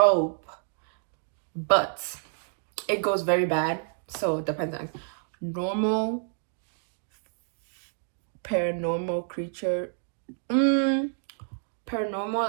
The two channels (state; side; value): silent; left; digital silence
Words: but it goes very bad. So it depends on normal, paranormal creature.